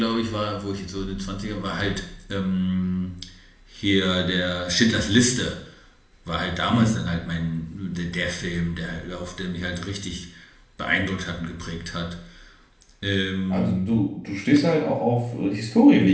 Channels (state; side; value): identical; both; correlation 1.00